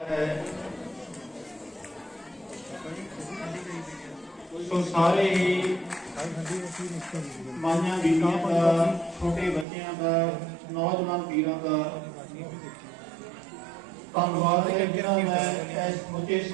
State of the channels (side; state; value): left; drops out; at 9.7 s